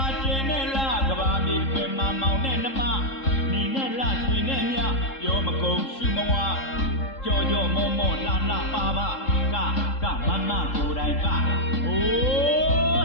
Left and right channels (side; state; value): right; late; 3.7 ms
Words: ာကျင်းနေလားကဘာမြေတွင်မှာမောင်နဲ့နှမနေနဲ့လားရွှေနဲ့မြပြောမကုန်ရှုမဝကြော်ကြော်မောမောလှလှပါပါကမမကိုယ်တိုင်ကအို